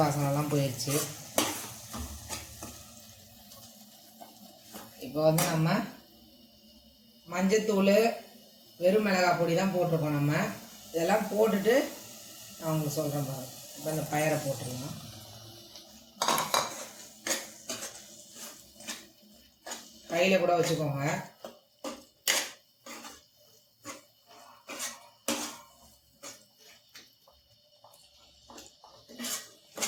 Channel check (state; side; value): identical; both; correlation 1.00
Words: வாசனெல்லாம் போயிடுச்சு. இப்போ வந்து நம்ம மஞ்சத்தூள் வெறும் மிளகாய் பொடி தான் போட்டிருக்கோம். நம்ம இதெல்லாம் போட்டுட்டு நான் உங்களுக்கு சொல்கிறேன் பாருங்கள். இப்போ இந்த பயரை போட்டுருலாம். கையில் கூட வச்சுக்கோங்க.